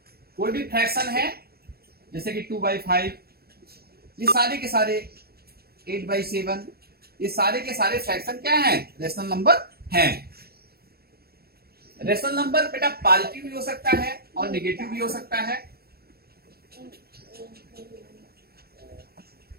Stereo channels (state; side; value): late; left; 0.45 ms